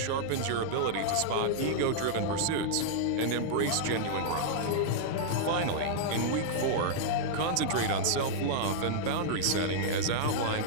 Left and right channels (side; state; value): both; different; correlation -0.02